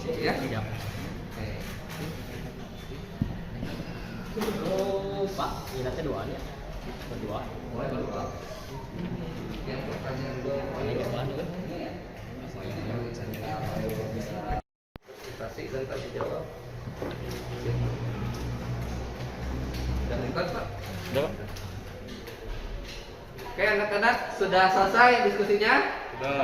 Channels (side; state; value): both; identical; correlation 1.00